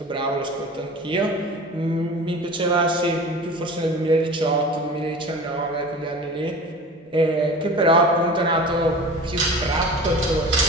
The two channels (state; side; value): normal; both; correlation 0.37